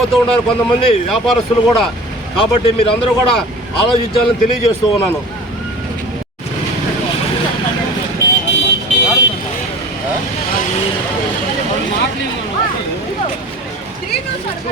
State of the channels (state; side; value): normal; both; correlation 0.40